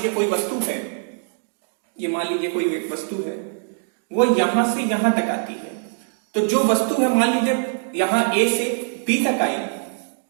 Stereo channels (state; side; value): silent; left; digital silence